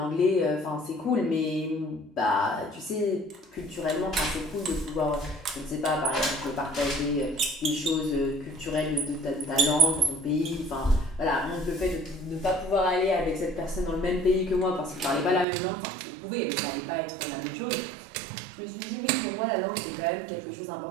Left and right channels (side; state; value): left; drops out; at 15.5 s